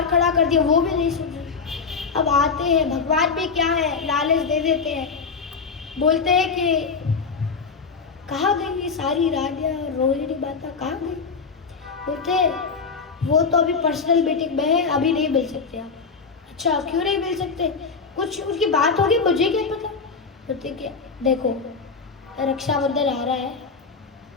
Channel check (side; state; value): right; quieter; 5.1 dB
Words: खड़ा कर दिया, वो भी नहीं सुन रही। अब आते हैं भगवान भी क्या है, लालच दे देते हैं, बोलते हैं कि कहाँ गई ये सारी रानियाँ और रोहिणी माता कहाँ गई? बोलते वो तो अभी पर्सनल मीटिंग में है, अभी नहीं मिल सकते आप। अच्छा क्यों नहीं मिल सकते? कुछ उनकी बात होगी, मुझे क्या पता। बोलते कि देखो रक्षाबंधन आ रहा है,